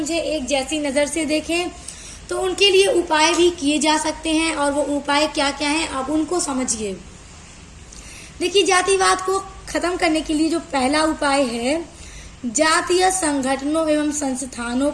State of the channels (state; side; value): identical; both; correlation 1.00